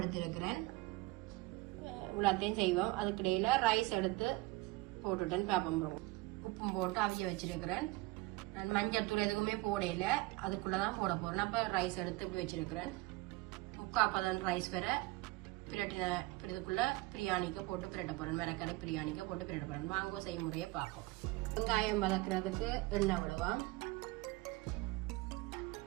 எடுத்திருக்கிறேன். இவ்வளோத்தையும் செய்வோம். அதுக்கிடையில் ரைஸ் எடுத்து போட்டுட்டேன். பேப்பம் உப்பும் போட்டு அவிய வச்சிருக்கிறேன். நான் மஞ்சள் தூள் எதுக்குமே போடையில, அதுக்குள்ளதான் போட போறேன். அப்ப ரைஸ் எடுத்து இப்படி வச்சிருக்கிறேன். 3/4 ரைஸ் வேற பிரட்டினதுக்குள்ள பிரியாணிக்கு போட்டு பிரட்ட போறேன். மிளகரை பிரியாணிக்கு போட்டு பிரட்ட போறேன். வாங்க செய்முறையை பார்ப்போம். வெங்காயம் வதக்குறதுக்கு எண்ணெய் விடுவோம்.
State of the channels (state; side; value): quieter; left; 22.0 dB